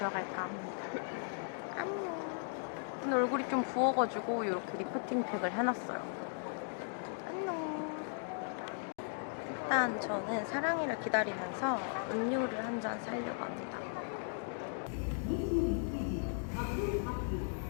합니다. 안녕. 오늘 얼굴이 좀 부어가지고 이렇게 리프팅 팩을 해놨어요. 안녕. 일단 저는 사랑이를 기다리면서 음료를 한 잔 사려고 합니다.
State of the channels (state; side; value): silent; right; digital silence